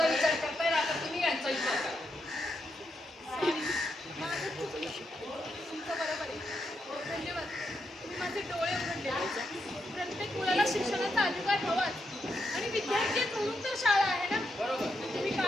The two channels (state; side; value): normal; both; correlation 0.82